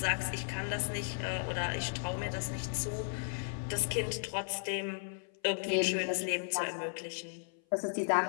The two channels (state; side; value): silent; right; 54 dB below the other